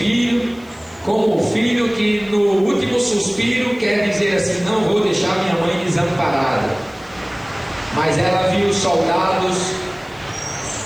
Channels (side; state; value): left; noise; hiss, 29 dB below the sound